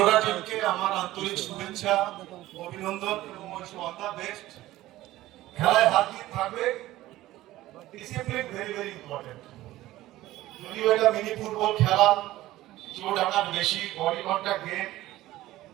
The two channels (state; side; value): quieter; left; 16.1 dB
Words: টিমকে আমার আন্তরিক শুভেচ্ছা, অভিনন্দন এবং অল দ্য বেস্ট। খেলায় হাত দিয়ে থাকবে, ডিসিপ্লিন ভেরি ভেরি ইম্পর্টেন্ট। যদিও এটা মিনি ফুটবল খেলা, চোট আঘাত বেশি, বডি কন্ট্যাক্ট গেম,